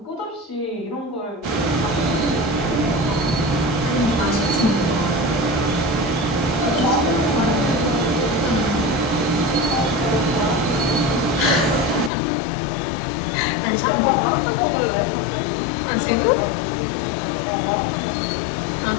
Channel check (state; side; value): drops out; right; at 12.1 s